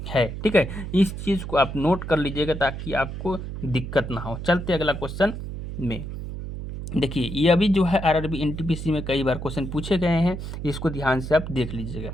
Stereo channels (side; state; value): right; noise; hum, 7 dB below the sound